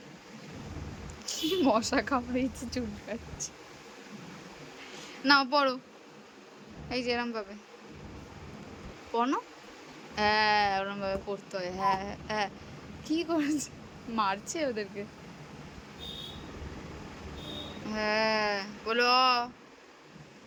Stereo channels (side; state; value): both; identical; correlation 1.00